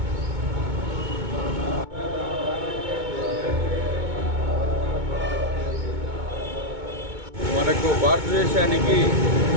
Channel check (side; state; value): left; late; 2.2 ms